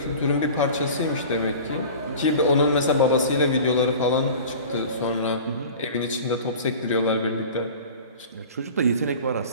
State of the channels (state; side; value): inverted; both; correlation -0.39